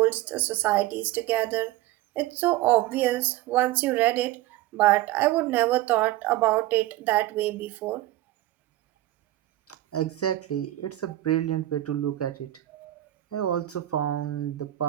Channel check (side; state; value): left; quieter; 15.4 dB